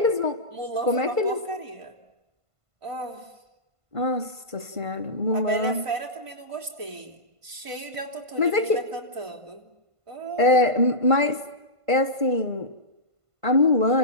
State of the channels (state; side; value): late; left; 1.5 ms